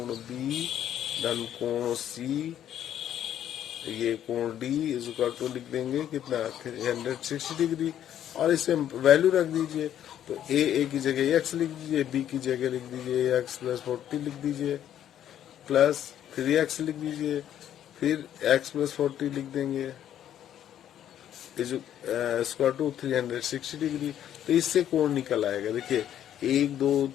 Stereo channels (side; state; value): right; quieter; 10.7 dB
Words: बी धन कोण सी, ये कोण डी इज इक्वल टू लिख देंगे कितना 360 डिग्री, और इसे वैल्यू रख दीजिए। तो ए की जगह x लिख दीजिए, बी की जगह लिख दीजिए x प्लस 40 लिख दीजिए, प्लस 3x लिख दीजिए, फिर x प्लस 40 लिख देंगे इज इक्वल टू 360 डिग्री। तो इससे कोण निकल आएगा। देखिए 1 2